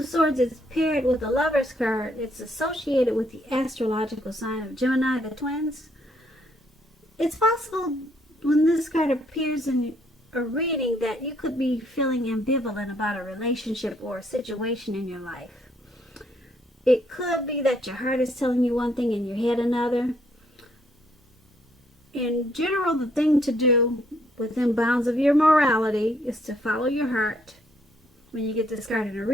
Swords is paired with the Lover's card. It's associated with the astrological sign of Gemini, the twins. It's possible when this card appears in a reading that you could be feeling ambivalent about a relationship or a situation in your life. It could be that your heart is telling you one thing and your head another. In general, the thing to do within bounds of your morality is to follow your heart. When you get this card in a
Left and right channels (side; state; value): both; normal; correlation 0.69